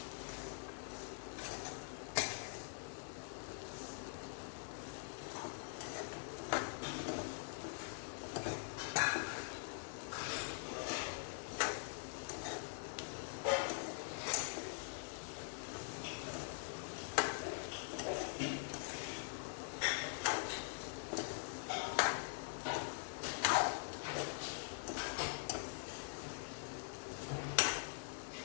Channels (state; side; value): silent; right; digital silence